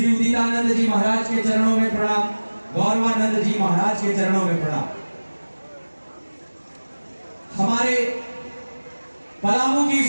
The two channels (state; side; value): inverted; both; correlation -1.00